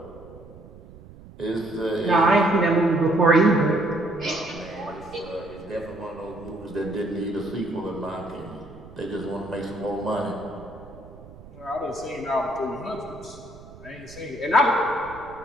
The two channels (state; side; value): noise; right; rumble, 19 dB below the sound